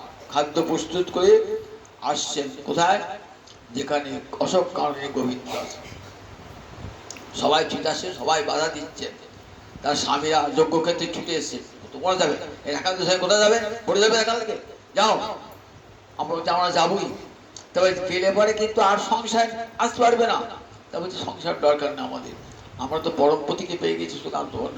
খাদ্য প্রস্তুত করে আসছেন। কোথায়? যেখানে অশোক কাননে গোবিন্দ আছে। সবাই ছুটে আসে, সবাই বাধা দিচ্ছে, তার স্বামীরা যজ্ঞক্ষেত্রে ছুটে এসছে। তোমরা যাবে এখান থেকে, কোথায় যাবে? পড়ে যাবে এখান থেকে, যাও। আমরা বলছি আমরা যাবোই, তবে গেলে পরে কিন্তু আর সংসার আসতে পারবে না। তা বলছি সংসার দরকার না আমাদের, আমরা তো পরমপতিকে পেয়ে গেছি, সুতরাং তোমার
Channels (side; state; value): both; identical; correlation 1.00